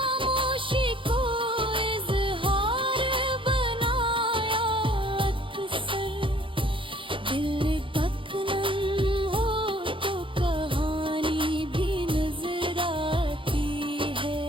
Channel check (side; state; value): left; late; 0.25 ms